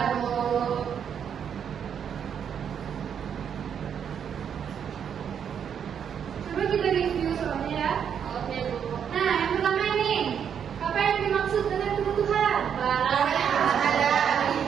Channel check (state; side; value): quieter; left; 8.0 dB